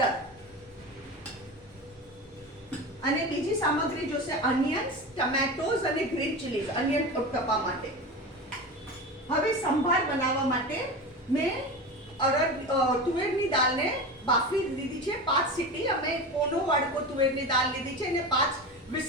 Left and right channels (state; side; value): normal; both; correlation 0.27